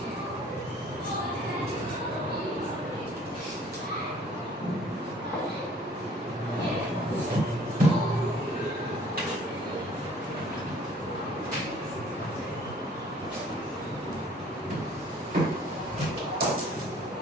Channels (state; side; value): normal; both; correlation 0.55